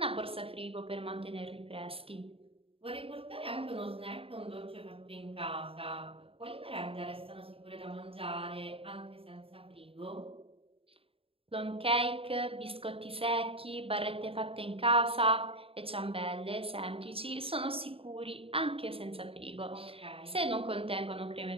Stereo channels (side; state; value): left; late; 0.27 ms